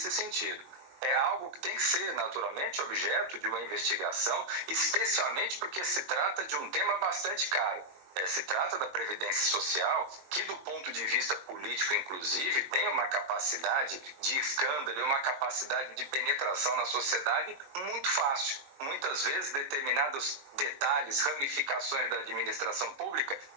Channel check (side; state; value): left; late; 22 ms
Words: sentido. É algo que tem que ser, naturalmente, objeto de uma investigação, especialmente porque se trata de um tema bastante caro. Se trata da Previdência Social, que do ponto de vista político, inclusive, tem uma capacidade de escândalo e uma capacidade de penetração na sociedade muito fácil. Muitas vezes, determinados detalhes, ramificações da administração pública